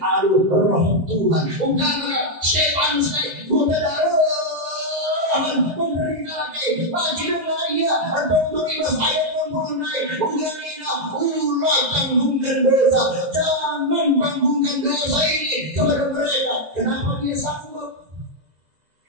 aduh roh Tuhan. Ungkapan Stefanus lagi, kuda darah menderita lagi, bagi dunia atau untuk ibas ayat mempunyai ungganina ulah tanggungkan dosa, jangan tanggungkan dosa ini kepada mereka. Kenapa dia sanggup?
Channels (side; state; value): left; late; 2.0 ms